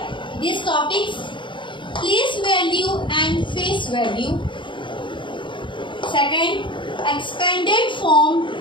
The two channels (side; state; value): right; late; 0.23 ms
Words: these topics: place value and face value. Second, expanded form